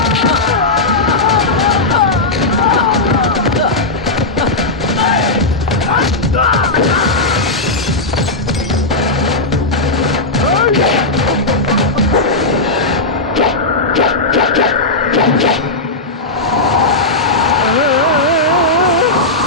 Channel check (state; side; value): quieter; right; 3.0 dB